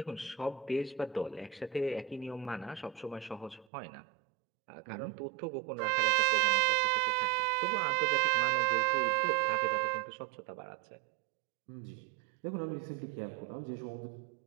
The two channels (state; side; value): drops out; left; at 3.7 s